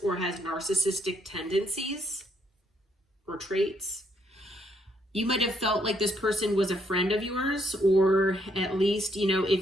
or has narcissistic tendencies or traits. You might have felt like this person was a friend of yours, or at least, you know,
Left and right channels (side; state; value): both; normal; correlation 0.73